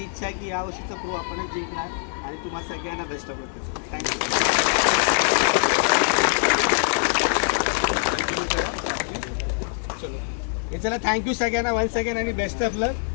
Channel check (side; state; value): right; silent; digital silence